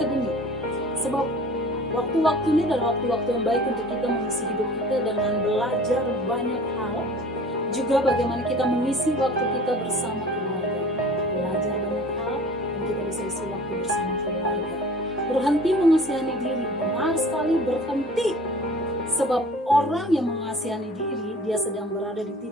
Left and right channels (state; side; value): normal; both; correlation 0.45